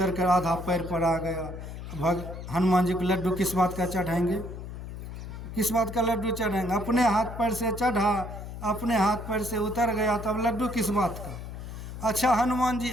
कर आधा पैर पर आ गया। हनुमान जी को लड्डू किस बात का चढ़ाएंगे, किस बात का लड्डू चढ़ाएंगे? अपने हाथ पैर से चढ़ा, अपने हाथ पैर से उतर गया, तब लड्डू किस बात का? अच्छा हनुमान जी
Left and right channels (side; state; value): left; noise; hum, 9 dB below the sound